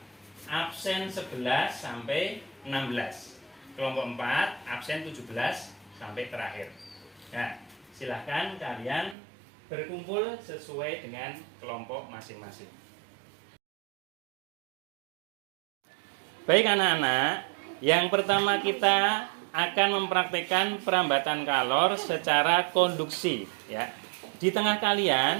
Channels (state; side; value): drops out; left; at 9.2 s